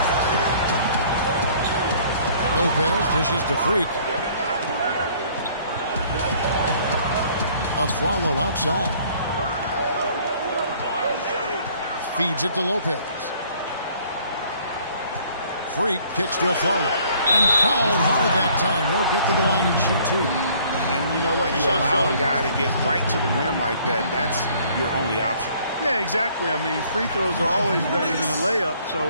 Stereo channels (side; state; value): both; inverted; correlation -0.58